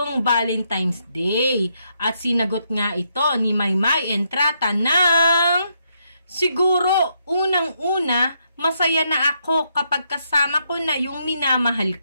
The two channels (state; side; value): inverted; both; correlation -0.77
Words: Valentine's Day. At sinagot nga ito ni Maymay Entrata ng siguro unang-una masaya na ako kapag kasama ko na yung minamahal